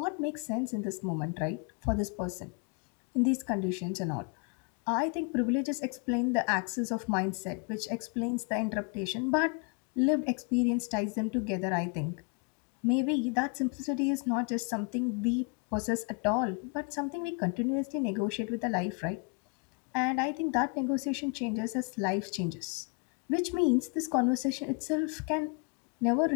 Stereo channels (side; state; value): right; quieter; 33.1 dB